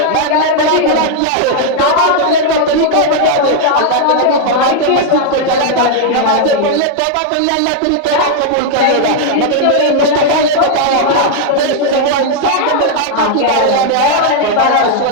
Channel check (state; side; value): different; both; correlation 0.00